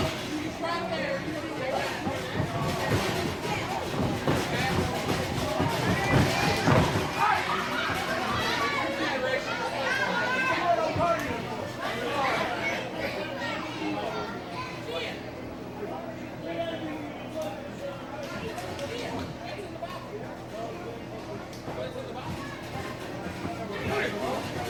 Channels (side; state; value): both; identical; correlation 1.00